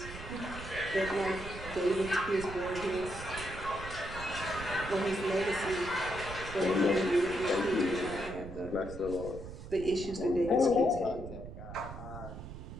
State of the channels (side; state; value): right; noise; rumble, 11 dB below the sound